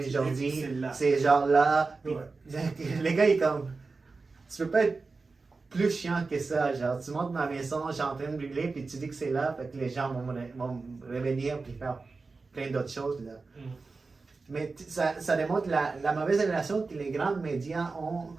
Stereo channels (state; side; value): quieter; left; 4.1 dB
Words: Jordi, c'est genre là. Puis, les gars, ils comme, tu peux pas être plus chiant que ça. Genre, tu montres ma maison, je suis en train de brûler, puis tu dis que c'est là, fait que les gens vont revenir puis faire plein d'autres choses là. Mais ça démontre la mauvaise relation que les grands médias ont